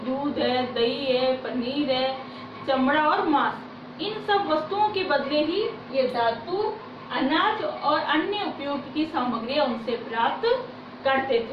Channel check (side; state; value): both; identical; correlation 1.00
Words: दूध है, दही है, पनीर है, चमड़ा और मांस, इन सब वस्तुओं के बदले ही ये धातु, अनाज और अन्य उपयोग की सामग्री उनसे प्राप्त करते